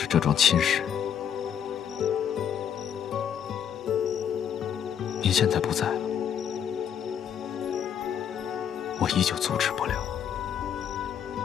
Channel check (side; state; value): right; quieter; 8.8 dB